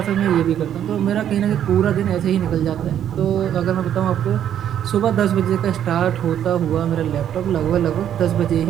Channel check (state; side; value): quieter; left; 10.0 dB